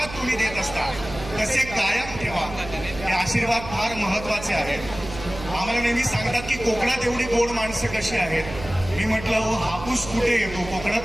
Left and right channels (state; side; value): noise; right; hum, 12 dB below the sound